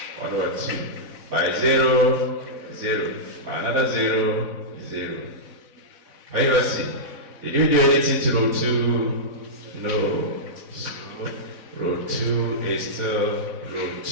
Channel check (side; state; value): left; late; 4.0 ms